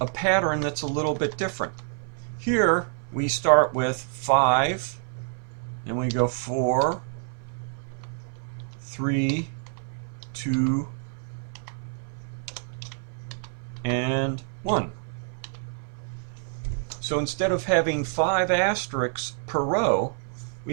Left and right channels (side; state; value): left; silent; 57 dB below the other